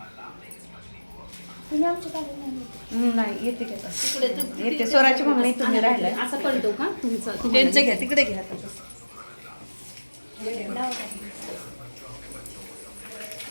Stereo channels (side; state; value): both; inverted; correlation -1.00